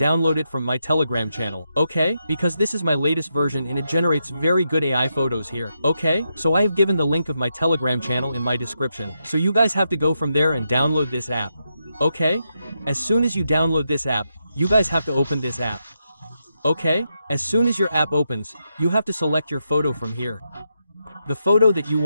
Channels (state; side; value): inverted; both; correlation -0.84